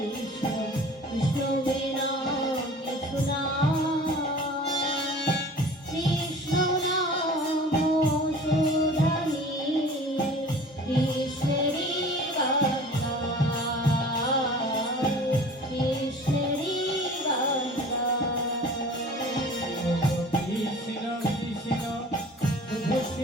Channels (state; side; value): normal; both; correlation 0.43